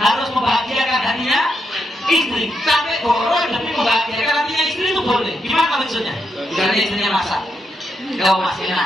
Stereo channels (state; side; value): normal; both; correlation 0.82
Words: harus membahagiakan hatinya istri. Sampai bohong demi membahagiakan hatinya istri itu boleh. Gimana maksudnya? Misalnya istrinya masak, kau masih